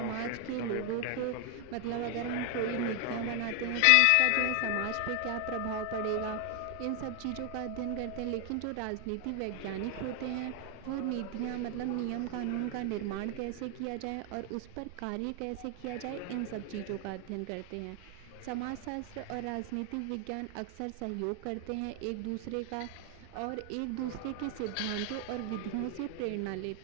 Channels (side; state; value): both; different; correlation 0.00